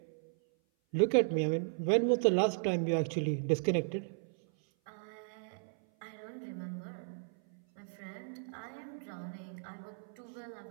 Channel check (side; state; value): left; silent; 54 dB below the other